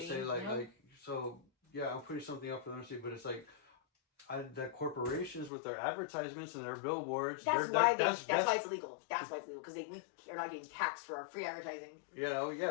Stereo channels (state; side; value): drops out; right; at 5.5 s